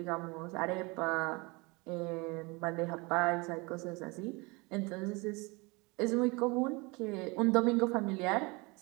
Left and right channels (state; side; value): quieter; left; 26.7 dB